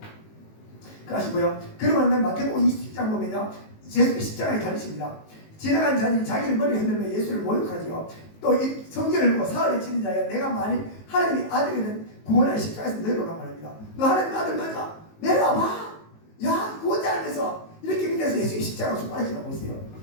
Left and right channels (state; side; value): late; right; 19 ms